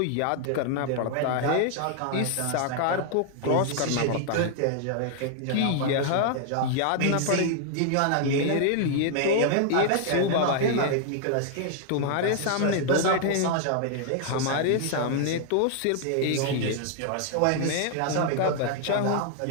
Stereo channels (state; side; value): different; both; correlation 0.00